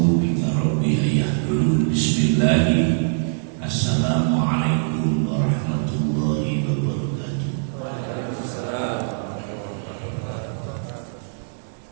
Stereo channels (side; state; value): left; silent; digital silence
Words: bika rabbi an yahdurun. Bismillah. Assalamualaikum warahmatullahi wabarakatuh.